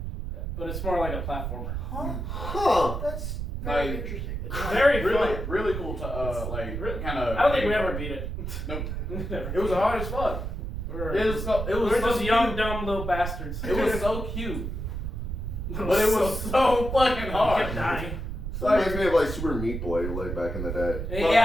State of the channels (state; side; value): noise; right; rumble, 4 dB below the sound